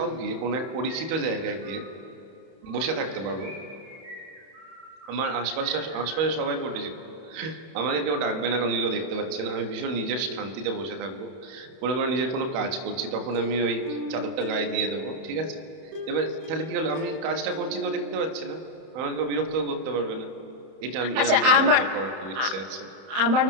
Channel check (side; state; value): left; late; 31 ms